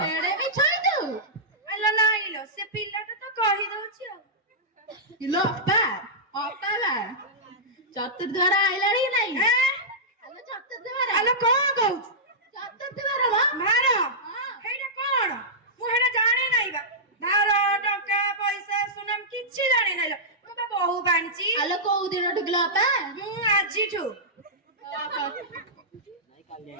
ଏଡେ ମିଛ ହେଇଛୁ। ଆଲୋ ନାଇଁ ଲୋ ସେ ପିଲାଟା ତ କହିଦଉଛି ଆଉ। ଇଲୋ ଅପା ଅପା ବା ଚତୁର୍ଦ୍ୱାର ଆଇଲାଣି କି ନାଇଁ? ଆଲୋ ଚତୁର୍ଦ୍ୱାର ଆଲୋ କଣ କହୁଛୁ? ଚତୁର୍ଦ୍ୱାର ବା ଭାର ହେଇଟା କଣ? ମୁଁ ହେଇଟା ଜାଣି ନାହିଁ ବା। ଭାର ଟଙ୍କା ପଇସା ସୁନାମ କିଛି ଜାଣି ନାହିଁ ଲୋ। ମୁଁ ବା ବୋହୁ ବାଣିଛି। ଆଲୋ କୋଉ ଦିନଠୁ କିଲୋ ଅପା? ମୁଁ ଆଜିଠୁ।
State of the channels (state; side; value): normal; both; correlation -0.13